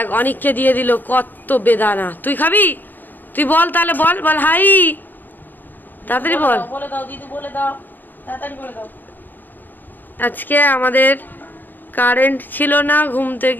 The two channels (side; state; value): right; late; 0.088 ms